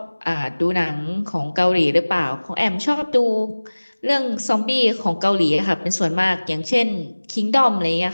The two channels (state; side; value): inverted; both; correlation -1.00